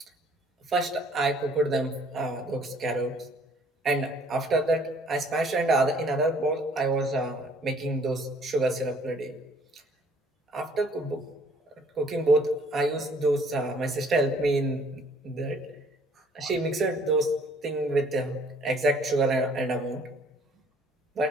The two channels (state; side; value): normal; both; correlation 0.59